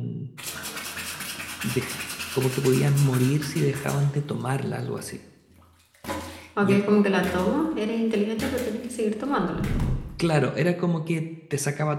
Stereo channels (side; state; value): both; identical; correlation 1.00